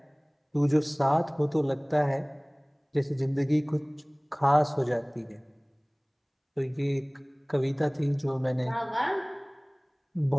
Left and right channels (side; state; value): both; identical; correlation 1.00